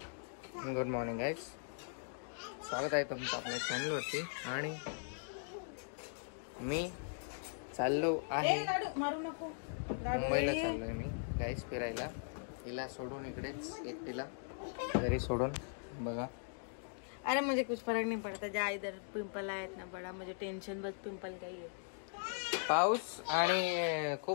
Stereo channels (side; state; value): right; silent; digital silence